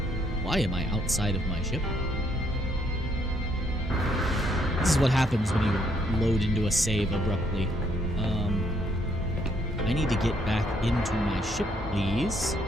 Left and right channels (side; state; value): both; normal; correlation 0.70